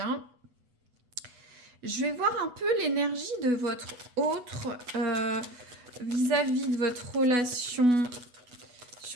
Je vais voir un peu l'énergie de votre autre vis-à-vis de votre relation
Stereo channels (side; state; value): left; late; 8.2 ms